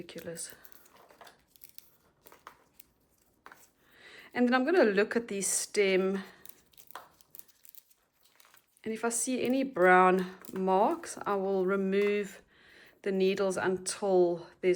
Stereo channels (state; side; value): identical; both; correlation 1.00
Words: And then I'm going to look at the stem, and if I see any brown marks, I will remove the needles until